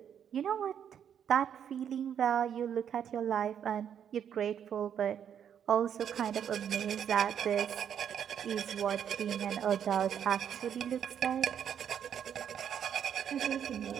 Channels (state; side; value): quieter; left; 8.8 dB